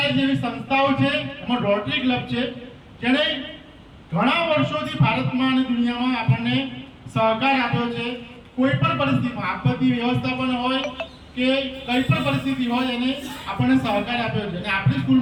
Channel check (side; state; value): both; identical; correlation 1.00